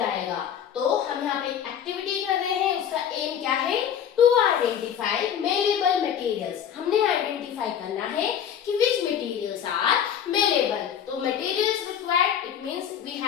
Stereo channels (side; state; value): right; quieter; 8.9 dB